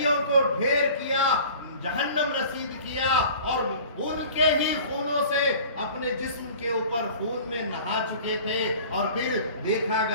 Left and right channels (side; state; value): both; inverted; correlation -0.44